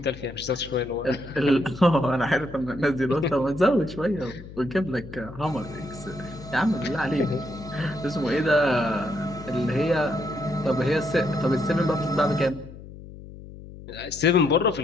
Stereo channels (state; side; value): noise; left; hum, 15 dB below the sound